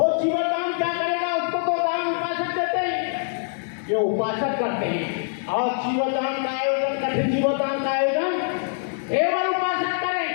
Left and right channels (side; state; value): right; silent; digital silence